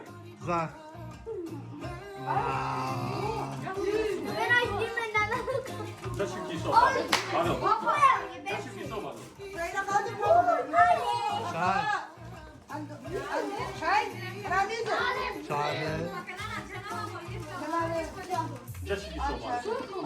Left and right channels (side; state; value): both; identical; correlation 1.00